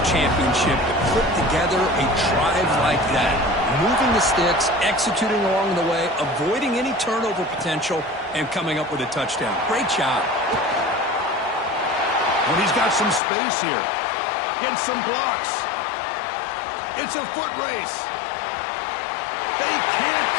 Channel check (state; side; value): drops out; right; at 13.2 s